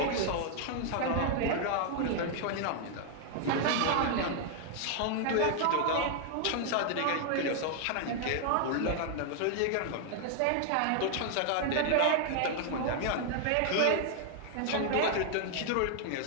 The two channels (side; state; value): both; different; correlation 0.00